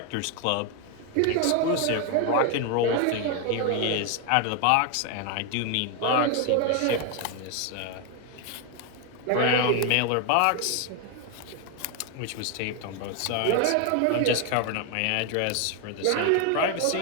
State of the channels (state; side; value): different; both; correlation 0.01